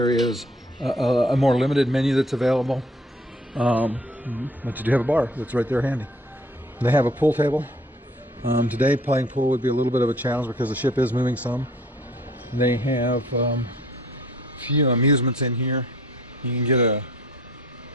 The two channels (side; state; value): both; normal; correlation 0.56